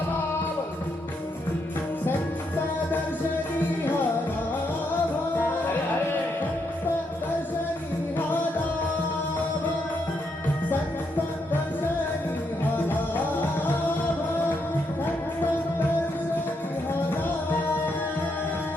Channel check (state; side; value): normal; both; correlation 0.78